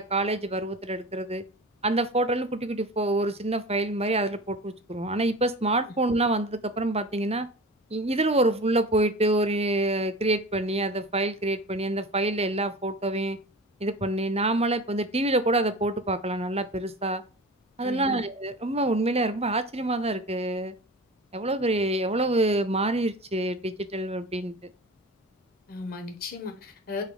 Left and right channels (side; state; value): both; normal; correlation 0.34